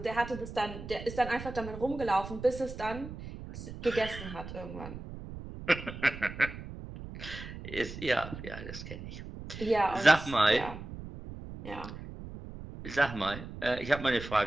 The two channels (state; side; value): noise; right; rumble, 11 dB below the sound